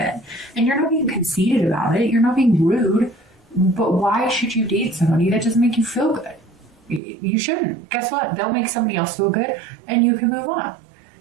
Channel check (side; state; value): left; drops out; at 7.0 s